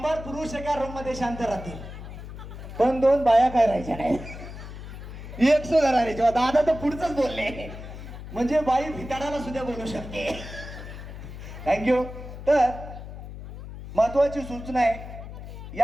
पुरुष एका रूम मध्ये शांत राहतील पण 2 बाया काय राहायच्या नाही. 100 राहायच्या. दादा तर पुढचंच बोलले, म्हणजे बाई भिताडाला सुद्धा बोलू शकते. थँक्यू. तर महत्वाची सूचना आहे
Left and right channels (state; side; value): noise; left; hum, 11 dB below the sound